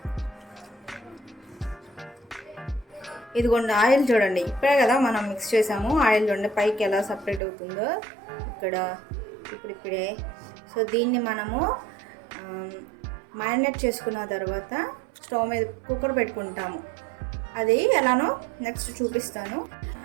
ఇదిగోండి, ఆయిల్ చూడండి, ఇప్పుడే కదా మనం మిక్స్ చేసాము. ఆయిల్ చూడండి పైకి ఎలా సపరేట్ అవుతుందో ఇక్కడ ఇప్పుడిప్పుడే. సో దీన్ని మనము మ్యారినేట్ చేసుకున్న తర్వాత స్టవ్ మీద కుక్కర్ పెట్టుకుంటాము. అది ఎలానో నెక్స్ట్ చూపిస్తాను.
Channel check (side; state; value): left; drops out; at 7.4 s